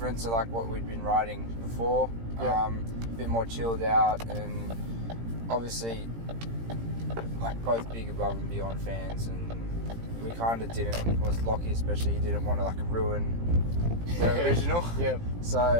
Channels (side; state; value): left; late; 17 ms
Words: to like what we'd been writing before. A bit more chilled out, and obviously like both big Above and Beyond fans, and we kind of Lockie especially, he didn't want to like ruin the original.